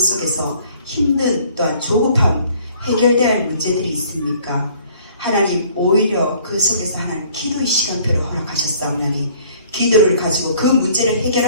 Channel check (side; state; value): both; inverted; correlation -0.56